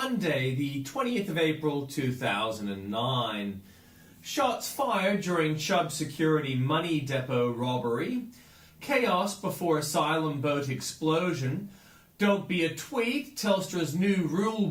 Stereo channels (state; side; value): identical; both; correlation 1.00